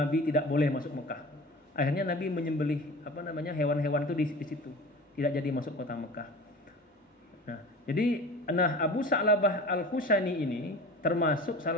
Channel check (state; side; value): normal; both; correlation 0.37